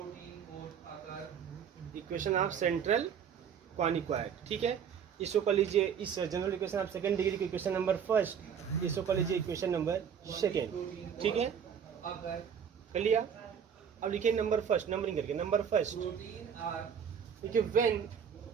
equation of central quadric, ठीक है। इसको कर लीजिए, इस general equation of second degree की इक्वेशन नंबर फर्स्ट, इसको कर लीजिए इक्वेशन नंबर सेकंड, ठीक है, कर लिया। अब लिखिए नंबर फर्स्ट, नंबरिंग करके नंबर फर्स्ट, देखिए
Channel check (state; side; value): quieter; left; 7.6 dB